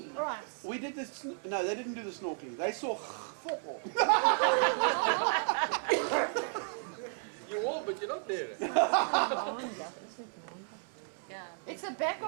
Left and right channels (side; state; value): left; silent; digital silence